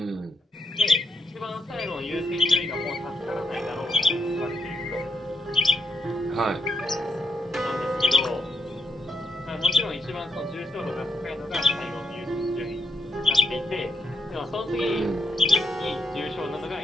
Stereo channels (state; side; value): normal; both; correlation 0.79